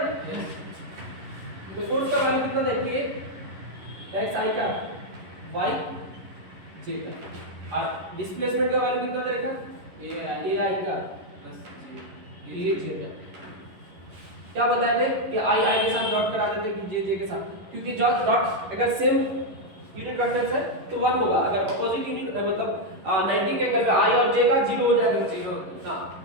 तो फोर्स का वैल्यू कितना देखिए, x i का y j का, और डिस्प्लेसमेंट का वैल्यू कितना दे रखा? a i का प्लस j का। क्या बताए थे कि i के साथ डॉट करा देते कि j के साथ, क्योंकि डॉट अगर सेम यूनिट वेक्टर्स है तो 1 होगा, अगर अपोजिट यूनिट मतलब 90 के एंगल पे i और j का 0 हो जाएगा, 0। हां,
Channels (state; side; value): late; left; 11 ms